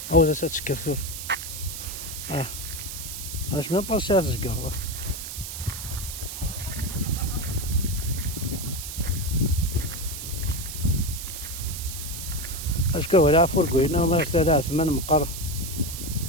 هو ذا تتكرثور اش ميم با ساعة تسكر اش كو لا فرقوينا ما ثلاث من مقر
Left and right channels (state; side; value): noise; right; hiss, 8 dB below the sound